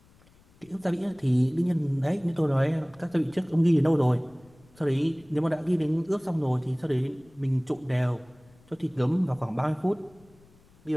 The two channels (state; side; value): noise; left; rumble, 29 dB below the sound